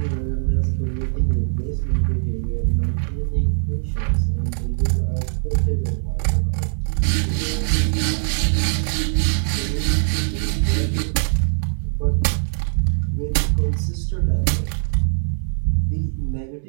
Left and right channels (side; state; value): left; silent; digital silence